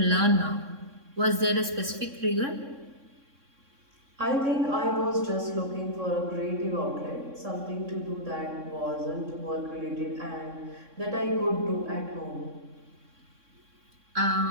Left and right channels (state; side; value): late; left; 3.6 ms